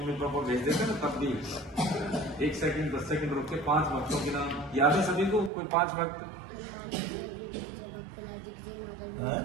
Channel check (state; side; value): drops out; left; at 5.5 s